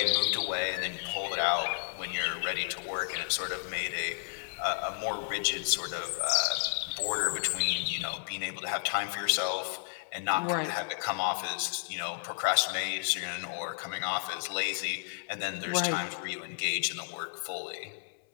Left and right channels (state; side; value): silent; right; 56 dB below the other